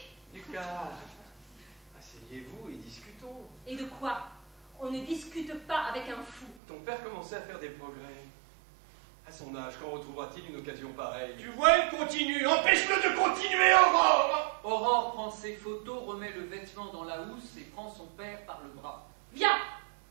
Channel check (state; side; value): drops out; left; at 6.6 s